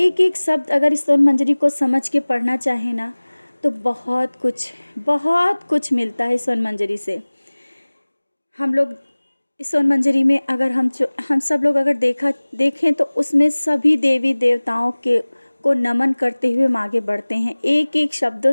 एक शब्द अगर इस स्वर्ण मंजरी को समझ के पढ़ना चाहे ना, तो बहुत कुछ मिलता है स्वर्ण मंजरी से। हम लोग इस स्वर्ण मंजरी में अगर हम सब लोग अगर देखें तो उसमें सभी देवी देवताओं को नमन करते हुए हम आगे बढ़ते हैं। एक एक शब्दों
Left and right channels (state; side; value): inverted; both; correlation -1.00